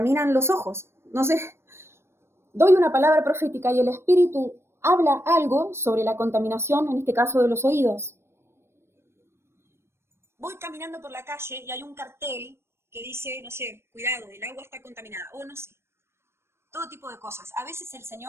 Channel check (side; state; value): left; late; 0.12 ms